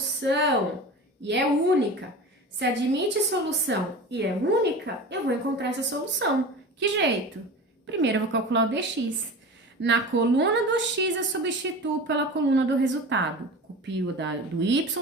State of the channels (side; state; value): both; normal; correlation 0.33